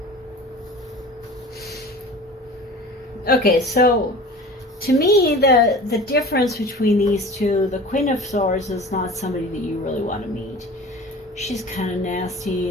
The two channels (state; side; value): normal; both; correlation 0.39